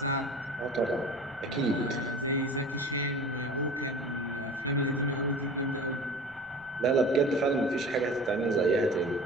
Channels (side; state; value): left; noise; rumble, 28 dB below the sound